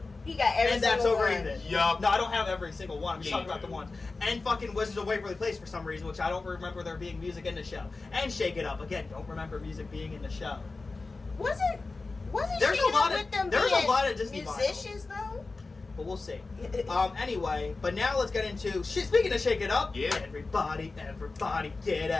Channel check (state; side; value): quieter; right; 3.7 dB